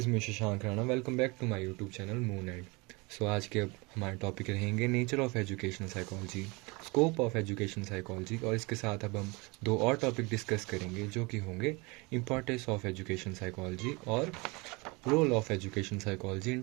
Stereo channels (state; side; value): quieter; left; 26.6 dB